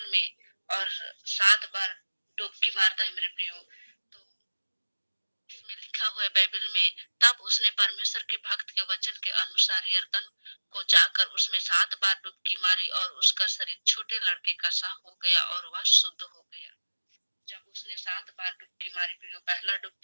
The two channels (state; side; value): inverted; both; correlation -1.00